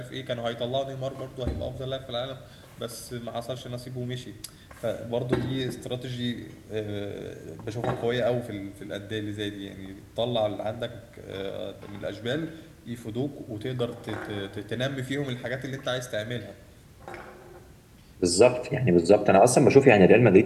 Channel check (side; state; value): both; identical; correlation 1.00